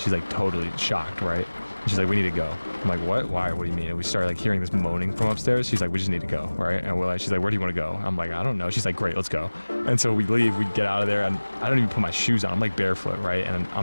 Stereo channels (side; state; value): both; inverted; correlation -1.00